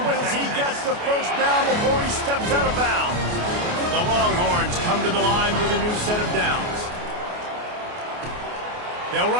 one as he gets the first down before he steps out of bounds. The Longhorns come to the line with a new set of downs. They'll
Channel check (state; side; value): late; left; 28 ms